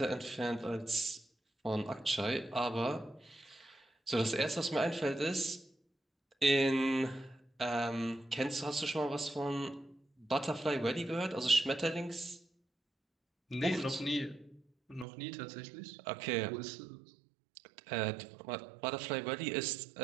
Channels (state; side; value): drops out; left; at 15.1 s